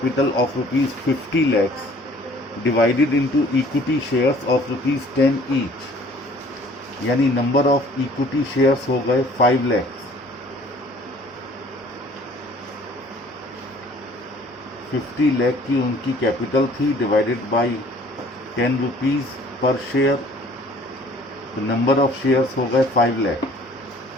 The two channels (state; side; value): normal; both; correlation 0.54